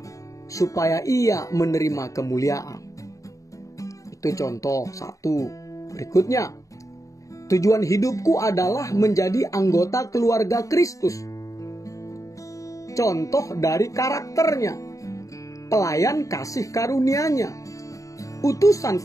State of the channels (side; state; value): right; late; 0.16 ms